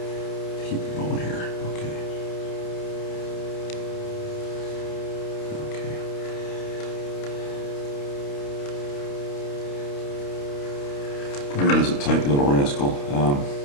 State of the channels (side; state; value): right; late; 29 ms